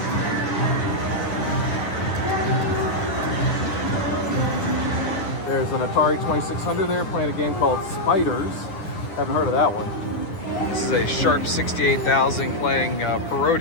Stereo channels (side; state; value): right; late; 10 ms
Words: There's an Atari 2600 there playing a game called Spiders. Haven't heard of that one. This is a Sharp 68,000 playing